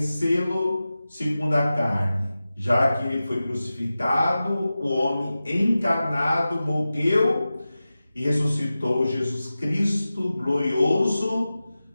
segundo a carne, já que ele foi crucificado, o homem encarnado morreu e ressuscitou Jesus Cristo glorioso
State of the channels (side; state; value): both; inverted; correlation -0.95